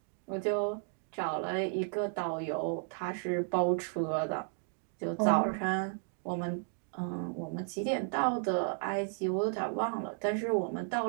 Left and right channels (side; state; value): left; silent; 55 dB below the other